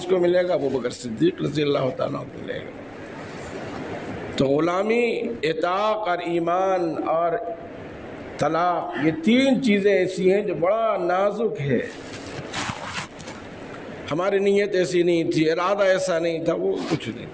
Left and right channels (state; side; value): noise; right; rumble, 29 dB below the sound